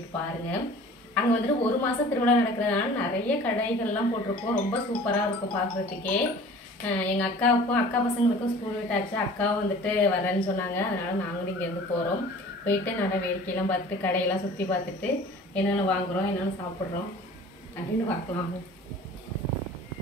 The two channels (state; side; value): normal; both; correlation 0.45